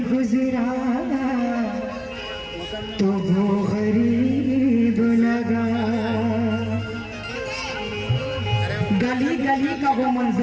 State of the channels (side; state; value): both; identical; correlation 1.00